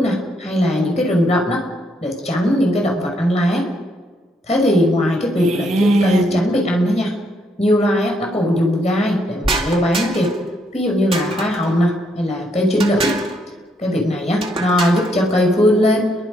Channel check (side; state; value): both; normal; correlation 0.74